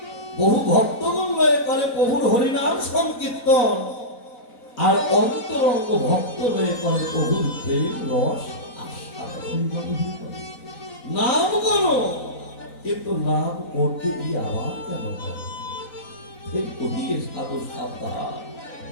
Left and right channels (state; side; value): late; right; 3.9 ms